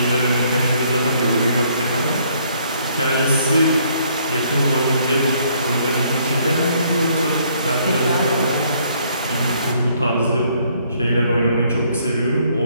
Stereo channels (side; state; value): both; inverted; correlation -0.66